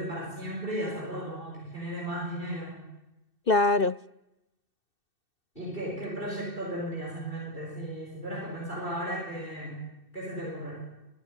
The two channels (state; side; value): late; right; 2.6 ms